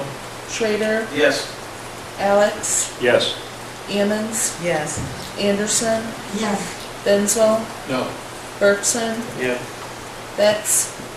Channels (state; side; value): identical; both; correlation 1.00